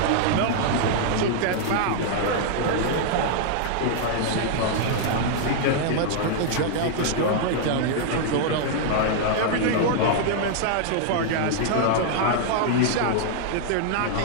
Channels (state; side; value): different; both; correlation -0.01